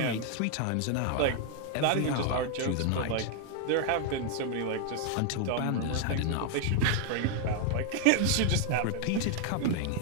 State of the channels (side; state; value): both; different; correlation 0.00